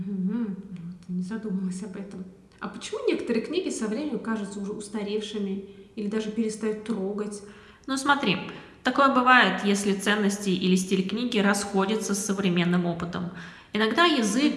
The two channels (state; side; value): identical; both; correlation 1.00